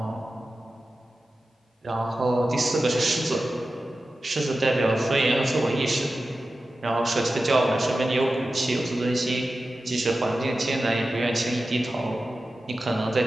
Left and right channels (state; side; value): normal; both; correlation 0.93